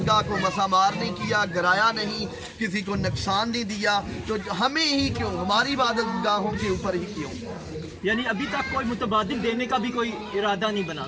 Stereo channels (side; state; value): both; identical; correlation 1.00